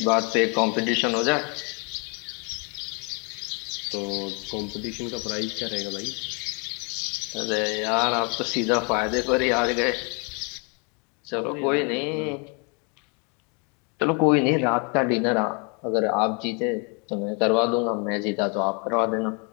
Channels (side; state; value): right; quieter; 34.4 dB